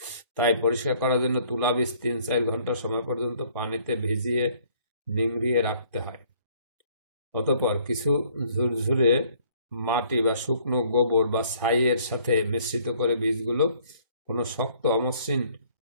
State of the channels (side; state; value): both; inverted; correlation -0.60